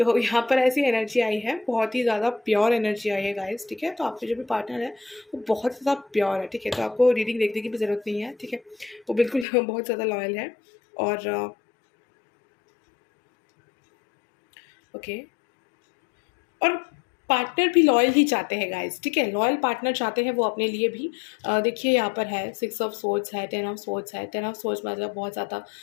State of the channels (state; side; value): drops out; right; at 9.5 s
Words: यहाँ पर ऐसी एनर्जी आई है, बहुत ही ज़्यादा प्योर एनर्जी आई है गाइस, ठीक है। तो आपके जो भी पार्टनर है वो बहुत ज़्यादा प्योर है, ठीक है। तो आपको रीडिंग देखने की भी ज़रूरत नहीं है, ठीक है, वो बिल्कुल बहुत ज़्यादा लॉयल है। और ओके, और पार्टनर भी लॉयल ही चाहते हैं गाइस, ठीक है, लॉयल पार्टनर चाहते हैं वो अपने लिए भी। देखिए यहाँ पर है 6 ऑफ सोर्ड्स है, 10 ऑफ सोर्ड्स है। 10 ऑफ सोर्ड्स मतलब बहुत ज़्यादा